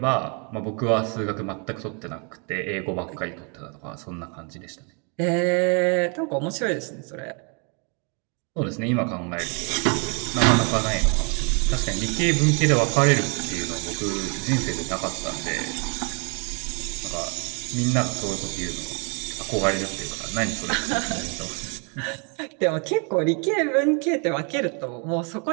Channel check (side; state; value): left; quieter; 36.4 dB